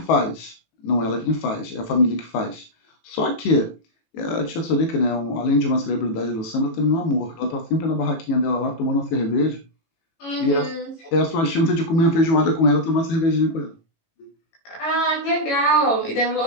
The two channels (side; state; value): right; late; 18 ms